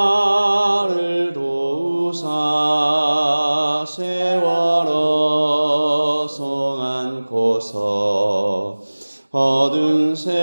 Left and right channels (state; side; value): inverted; both; correlation -1.00